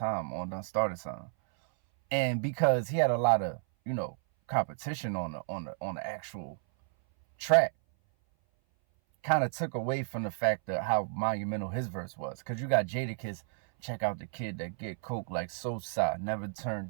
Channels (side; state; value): left; silent; 57 dB below the other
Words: on Done Started Something. And because he had a lot of, competition on the actual track, kind of took away from the fact of how monumental his verse was. Because you got Jadakiss, check out the kid that get coke like Sosa, never turn